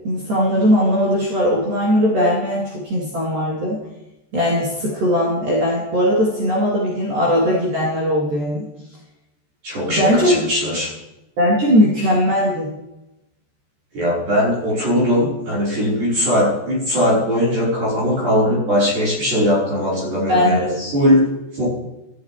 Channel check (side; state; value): left; late; 14 ms